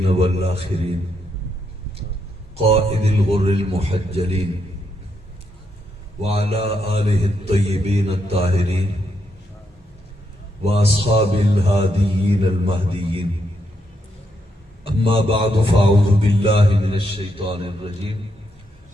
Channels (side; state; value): both; normal; correlation 0.79